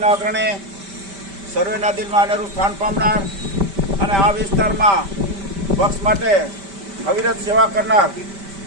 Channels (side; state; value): left; late; 5.1 ms